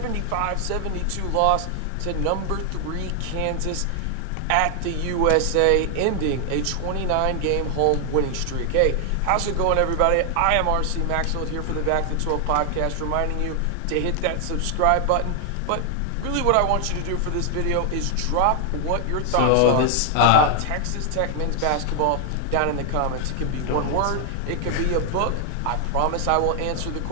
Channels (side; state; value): both; different; correlation 0.00